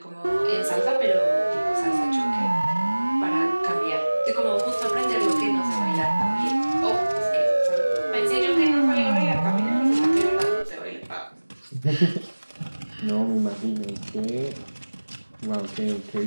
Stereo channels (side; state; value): both; inverted; correlation -1.00